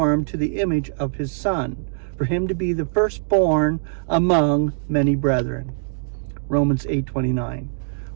to the image of his Son, for him to be the firstborn among many brethren. Romans 8:29.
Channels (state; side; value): silent; left; digital silence